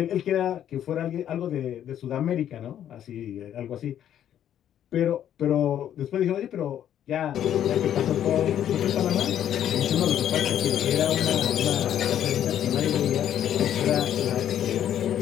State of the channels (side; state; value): right; quieter; 10.5 dB